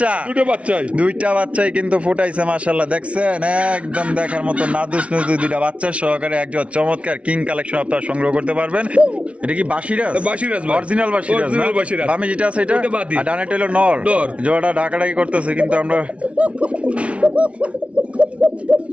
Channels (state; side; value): late; left; 0.062 ms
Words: বাচ্চাই কিন্তু ফুটাইছে মাশাআল্লাহ। দেখছেন একদম দেখার মতো নাদুস নুদু দুইটা বাচ্চা সহকারে একজন চমৎকার কিং কালেকশন আপনারা সংগ্রহ করতে পারবেন। এটা কি বাসিরাজ? ভাই। অরিজিনাল বাসিরাজ না? বামে যেটা আছে এটা, ওটা বাদি। আর ডানেটা হলো নর। নর। জোড়াটা ঢাকাঢাকি করতেছে কিন্তু আমরা